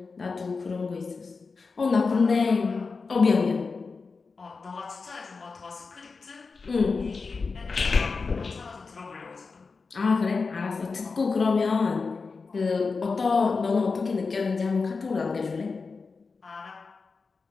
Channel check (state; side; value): quieter; right; 4.5 dB